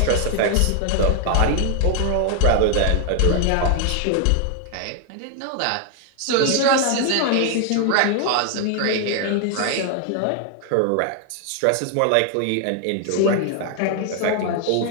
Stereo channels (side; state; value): both; different; correlation 0.00